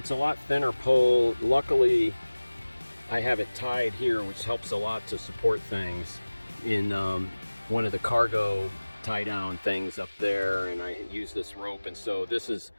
a lot thinner pole. Luckily I have it tied here, which helps a lot to support things in one of the cargo tie down things up there, and I use this rope, and so this is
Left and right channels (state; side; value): inverted; both; correlation -1.00